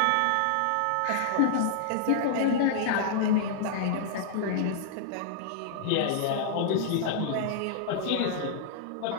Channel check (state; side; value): different; both; correlation -0.01